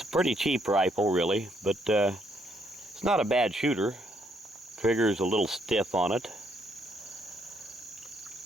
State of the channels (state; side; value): normal; both; correlation 0.72